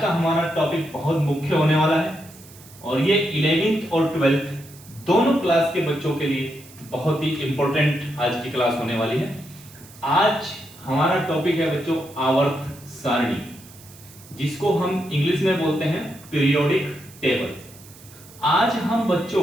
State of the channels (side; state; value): right; noise; hiss, 21 dB below the sound